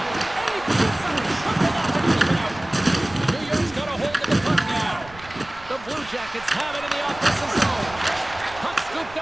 And he gets him. Shuffled up and keep it out. New York's got a hold of the puck now. The Blue Jackets have it in the offensive zone. Puck scooped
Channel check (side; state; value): right; noise; rumble, 19 dB below the sound